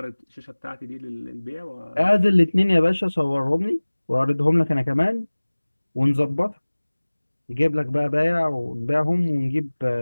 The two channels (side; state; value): both; inverted; correlation -1.00